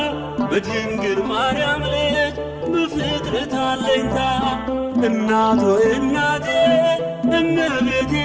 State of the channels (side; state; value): both; identical; correlation 1.00